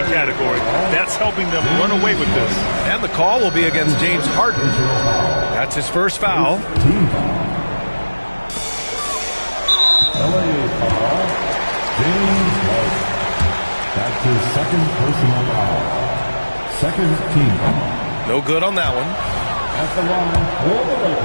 category. That's helping them run away with this. And the call will be against James Harden. That's his first foul. Team foul. LA foul. James Harden. That's his second personal foul. Second team foul. No good on that one. At the line for the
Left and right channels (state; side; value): inverted; both; correlation -1.00